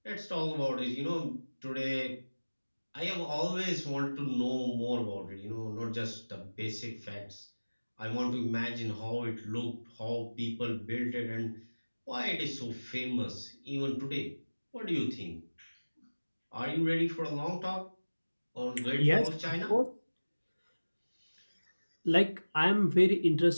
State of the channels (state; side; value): inverted; both; correlation -1.00